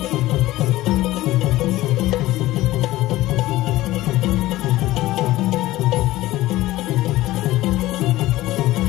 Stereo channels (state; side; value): quieter; right; 16.9 dB